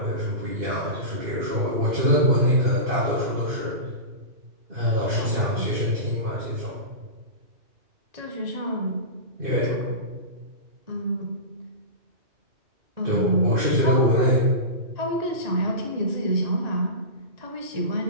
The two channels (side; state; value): left; late; 2.5 ms